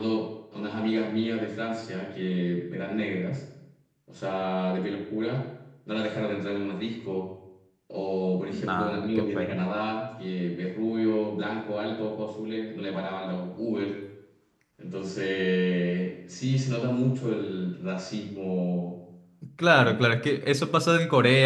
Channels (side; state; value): both; identical; correlation 1.00